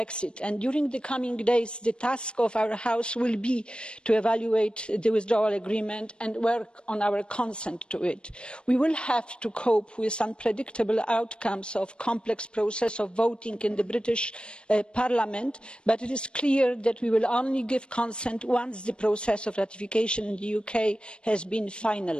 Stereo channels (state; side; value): late; right; 0.055 ms